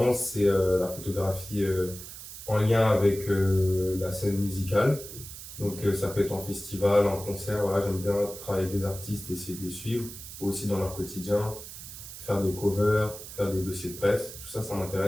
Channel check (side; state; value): right; noise; hiss, 12 dB below the sound